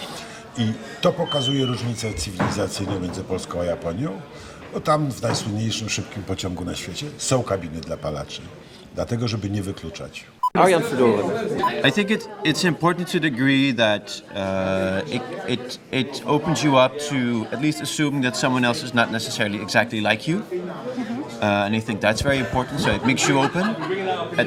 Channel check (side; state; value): both; identical; correlation 1.00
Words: I to pokazuje różnicę cywilizacyjną między Polską a Japonią, bo tam w najsłynniejszym szybkim pociągu na świecie są kabiny dla palaczy, dlatego żeby nie wykluczać. I think it's important to the degree that it opens you up to at least assuming that someone else is not necessarily exactly like you. And I think that's very important, so it makes you open.